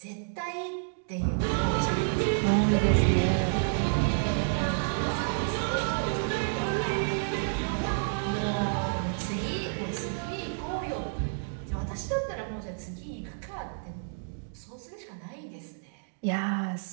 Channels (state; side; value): silent; left; digital silence